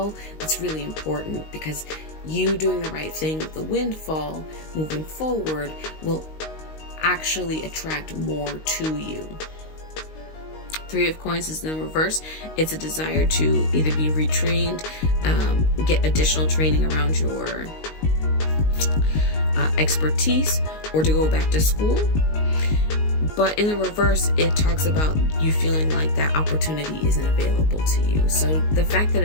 that's really important, because you doing the right thing with the windfall moving forward will actually attract more to you. 3 of coins is in the reverse. It's a desire to either be retrained, get additional training around your expertise, or to go back to school. But in the reverse, it talks about you feeling like that opportunity isn't available to you. So the fact that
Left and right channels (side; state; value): right; late; 19 ms